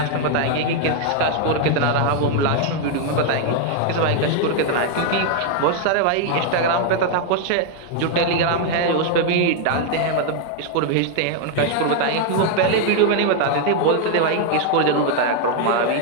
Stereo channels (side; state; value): both; different; correlation 0.00